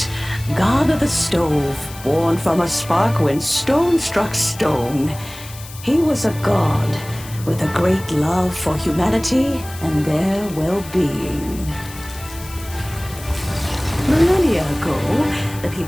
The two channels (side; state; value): left; noise; hiss, 16 dB below the sound